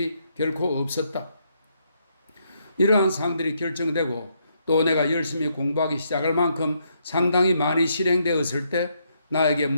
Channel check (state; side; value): inverted; both; correlation -0.75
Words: 결코 없었다. 이러한 사항들이 결정되고 또 내가 열심히 공부하기 시작할 만큼 상당히 많이 실행되었을 때 나에게